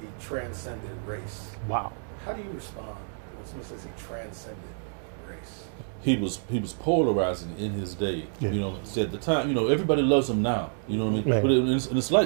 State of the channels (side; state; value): left; silent; digital silence